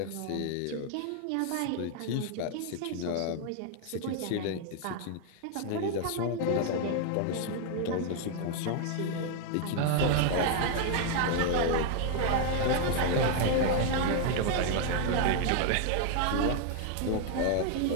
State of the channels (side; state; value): both; different; correlation 0.00